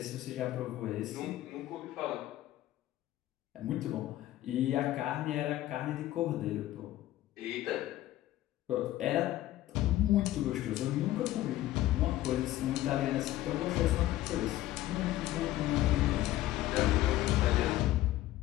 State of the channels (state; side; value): quieter; right; 14.9 dB